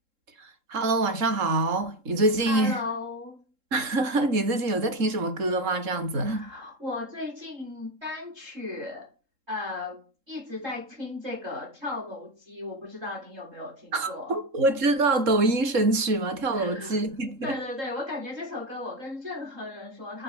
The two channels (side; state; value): left; late; 3.7 ms